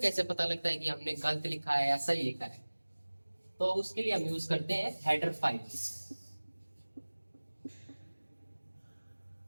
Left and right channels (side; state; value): both; inverted; correlation -1.00